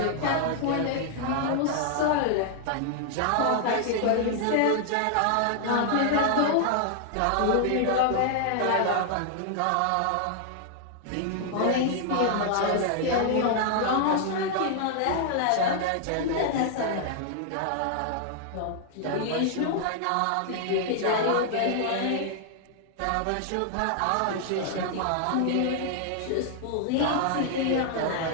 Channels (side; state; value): both; different; correlation 0.00